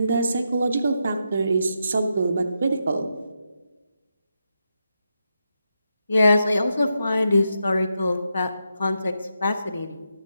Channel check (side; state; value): both; inverted; correlation -0.85